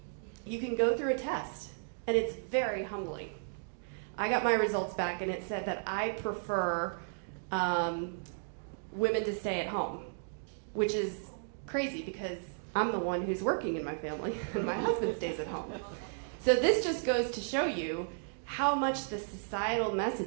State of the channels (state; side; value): silent; left; digital silence